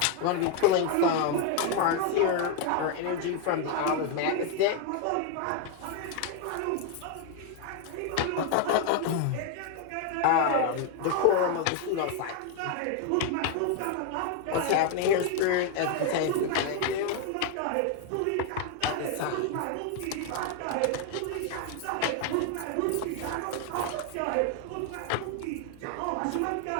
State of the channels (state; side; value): different; both; correlation 0.01